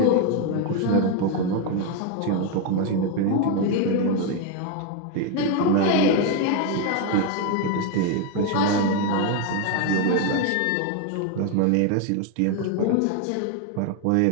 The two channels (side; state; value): both; different; correlation 0.01